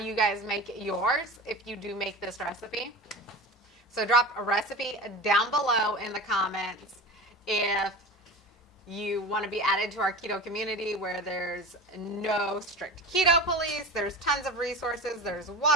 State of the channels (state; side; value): normal; both; correlation 0.31